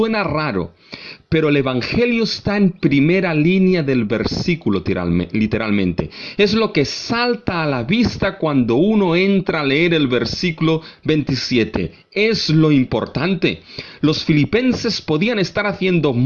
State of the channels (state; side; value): identical; both; correlation 1.00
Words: raro, pero el Evangelio está en primera línea del versículo literalmente. Es lo que salta a la vista cuando uno entra a leer el versículo 27. Es lo importante. Los filipenses podían estar haciendo